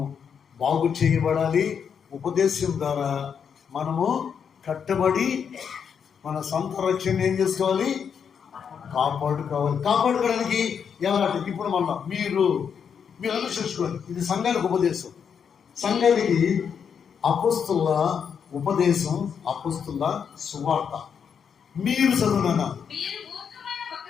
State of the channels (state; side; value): quieter; right; 7.1 dB